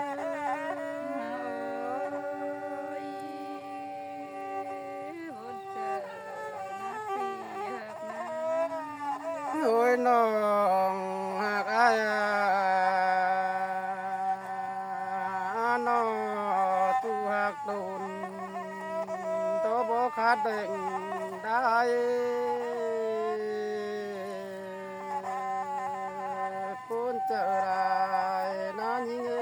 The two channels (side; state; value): both; identical; correlation 1.00